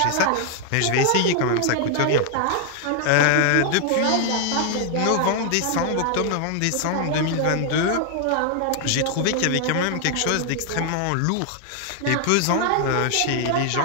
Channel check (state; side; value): different; both; correlation 0.00